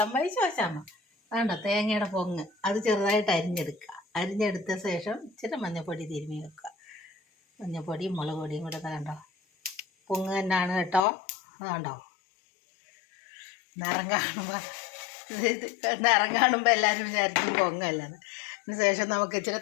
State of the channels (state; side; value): drops out; right; at 11.1 s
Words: വഴി ശോശാമ്മ. വേണ്ട തേങ്ങയുടെ പൊങ്ങ് അത് ചെറുതായിട്ട് അരിഞ്ഞെടുക്കുക. അരിഞ്ഞെടുത്ത ശേഷം ഇച്ചിരി മഞ്ഞൾപ്പൊടി തിരുമ്മി വെക്കുക. മഞ്ഞൾപ്പൊടിയും മുളക് പൊടിയും കൂടെ കണ്ടോ, പൊങ്ങ് തന്നെയാണ് കേട്ടോ. അതുകൊണ്ടോ നിറം കാണുമ്പോൾ നിറം കാണുമ്പോൾ എല്ലാവരും വിചാരിക്കും പൊങ്ങല്ലത്. അതിന് ശേഷം നമുക്ക് ഇച്ചിരി